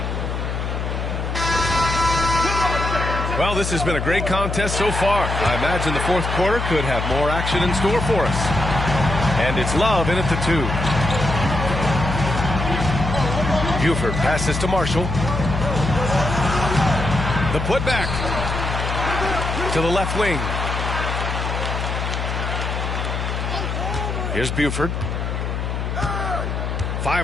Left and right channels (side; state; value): left; noise; hum, 3 dB below the sound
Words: Well, this has been a great contest so far. I imagine the fourth quarter could have more action in store for us. And it's Love in at the 2. Buford passes to Marshall. The putback to the left wing. Here's Buford.